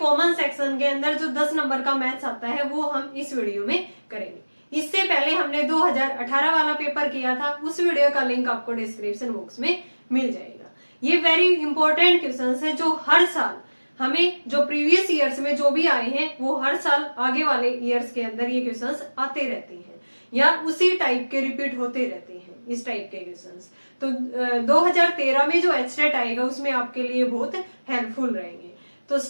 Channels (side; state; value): both; inverted; correlation -1.00